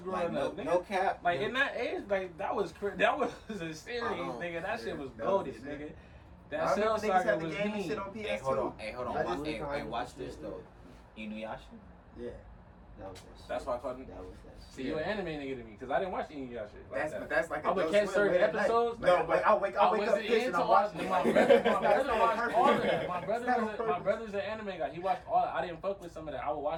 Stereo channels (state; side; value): identical; both; correlation 1.00